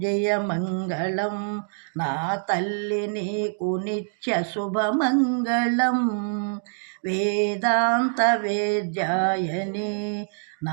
జయ మంగళం నా తల్లి నీకు నిత్య శుభమంగళం. వేదాంత వేద్యాయని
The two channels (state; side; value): silent; left; digital silence